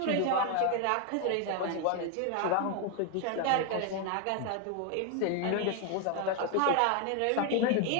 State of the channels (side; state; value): both; different; correlation 0.01